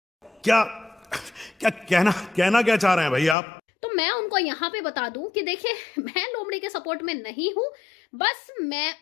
क्या क्या कहना क्या चाह रहे हैं भाई आप? तो मैं उनको यहाँ पे बता दूं कि देखिए, मैं लोमड़ी के सपोर्ट में नहीं हूं, बस मैं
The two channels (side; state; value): right; drops out; at 3.4 s